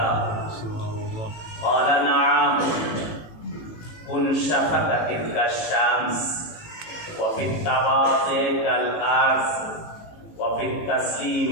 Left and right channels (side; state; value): right; late; 18 ms